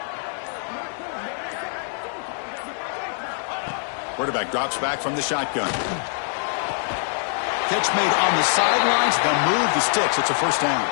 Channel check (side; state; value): right; silent; 63 dB below the other